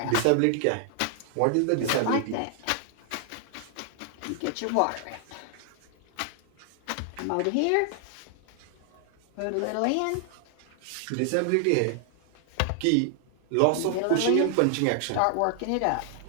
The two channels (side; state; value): both; different; correlation 0.00